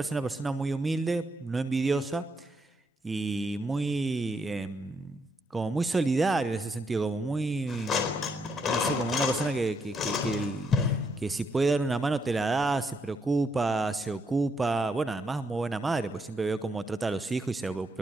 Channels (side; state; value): both; normal; correlation 0.77